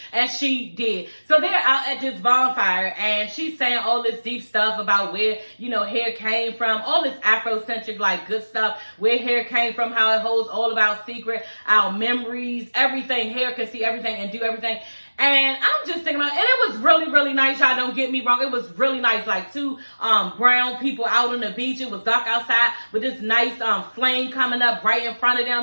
And she did. So they're out at this bonfire, and she's saying all this deep stuff about where, you know, hair came from, all this Afrocentric, like, good stuff, where hair came from, how it holds all of our secret, our memories, everything. Hair can see everything and do everything. And I'm just thinking about, and it was really, really nice. Y'all don't get me wrong. It was really nice. Like two brown people out on the beach. It was dark outside with this nice flame coming up right in front of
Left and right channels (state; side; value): inverted; both; correlation -1.00